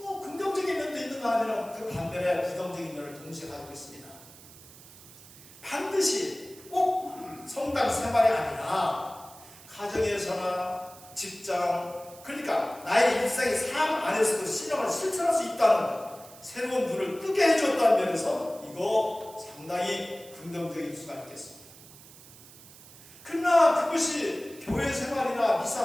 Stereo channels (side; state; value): right; noise; hiss, 20 dB below the sound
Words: 긍정적인 면도 있는가 하면 그 반면에 부정적인 면을 동시에 가지고 있습니다. 반드시 꼭 성당 생활이 아니라 가정에서나 직장, 그러니까 나의 일상의 삶 안에서도 신앙을 실천할 수 있다는 새로운 문을 뜨게 해줬다는 면에서 이거 상당히 긍정적일 수가 있겠습니다. 그러나 그것이 교회 생활이나 미사